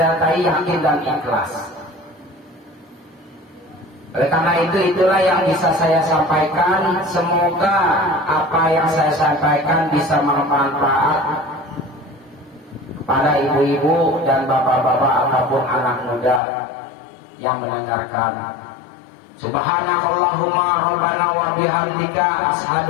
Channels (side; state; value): right; drops out; at 16.4 s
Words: yakin dan ikhlas. Oleh karena itu, itulah yang bisa saya sampaikan. Semoga apa yang saya sampaikan bisa bermanfaat kepada ibu-ibu dan bapak-bapak ataupun anak muda yang mendengarkan. Subhanakallahumma rabbana wa bihamdika